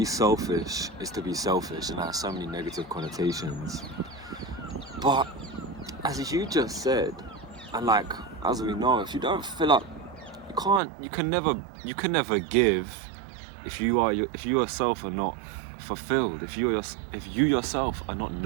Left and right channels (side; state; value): left; drops out; at 10.8 s